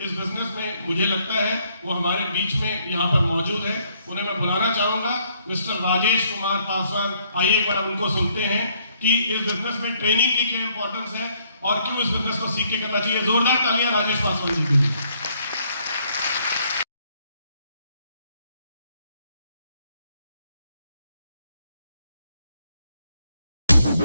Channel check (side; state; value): both; inverted; correlation -0.69